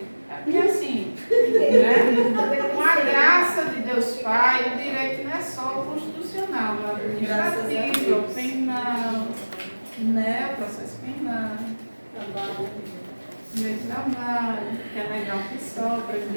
É porque assim, né? Com a graça de Deus Pai, o direito não é só o constitucional, o administrativo, o penal, né? O processo penal, Trabalho. Meu trabalho, que é legal que sobra,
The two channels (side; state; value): both; inverted; correlation -1.00